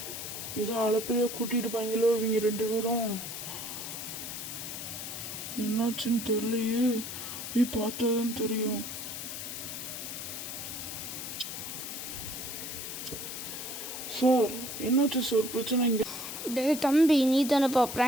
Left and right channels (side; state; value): left; noise; hiss, 7 dB below the sound